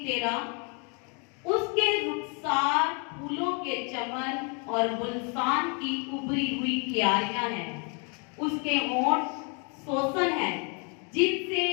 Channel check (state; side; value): quieter; right; 35.8 dB